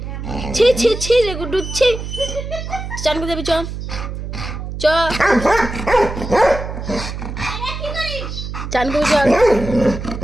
ছি ছি ছি রে গুড্ডু ছি। চান করে দেবি, চ চ চান করবি, চল।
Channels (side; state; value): right; noise; hum, 7 dB below the sound